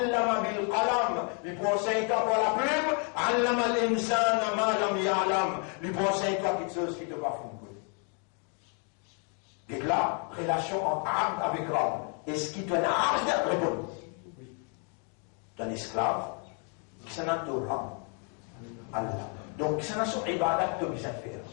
bil qalam. Il prend 5 ans pour la plume. Allama l'insana ma lam ya'lam. Il prend 5 ans quelque chose qui te va fondre. Et là, relation entre Abd avec Rab. Est-ce qu'il te donne Abd? Réponds. D'un esclave, qui s'en a de Rab. Allah. Donc, qui s'en a son ibadat de bien faire.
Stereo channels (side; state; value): right; quieter; 39.4 dB